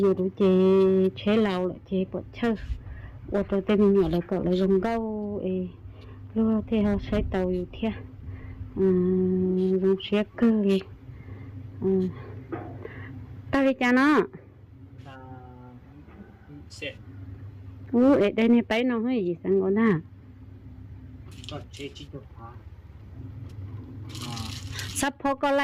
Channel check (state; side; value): identical; both; correlation 1.00